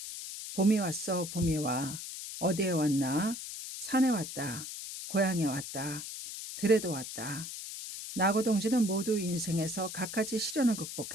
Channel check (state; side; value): noise; left; hiss, 8 dB below the sound